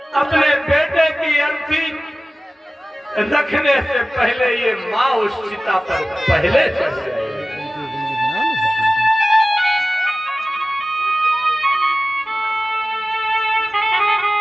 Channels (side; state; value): both; normal; correlation 0.96